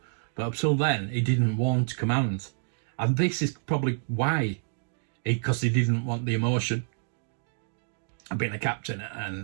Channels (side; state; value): left; silent; digital silence